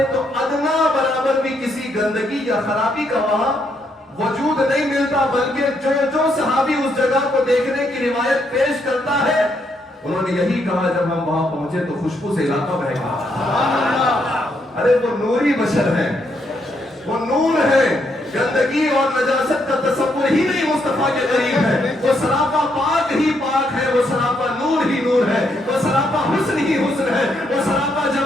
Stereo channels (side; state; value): both; normal; correlation 0.76